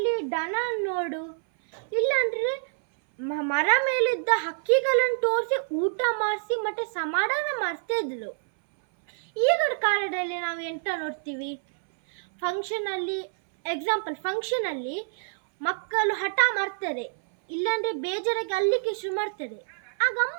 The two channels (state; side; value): silent; left; 60 dB below the other